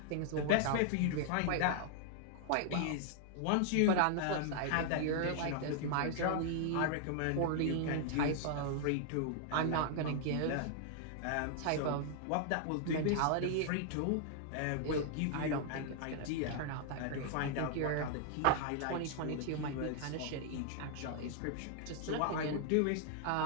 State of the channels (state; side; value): different; both; correlation 0.00